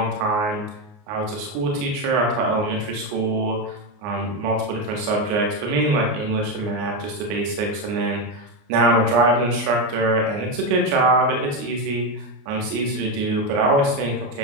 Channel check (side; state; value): left; late; 29 ms